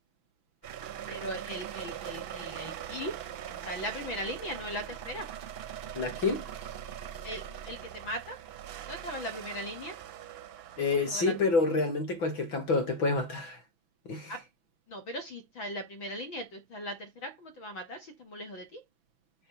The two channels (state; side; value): late; right; 6.0 ms